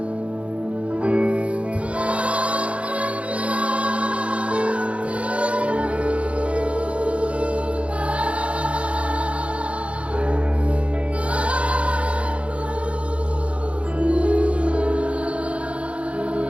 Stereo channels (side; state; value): left; late; 0.062 ms